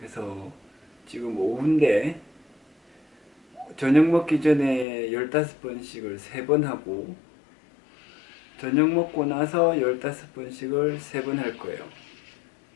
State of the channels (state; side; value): drops out; right; at 4.9 s